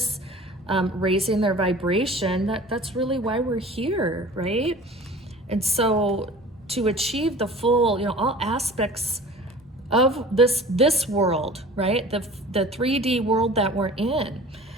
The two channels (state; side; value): normal; both; correlation 0.43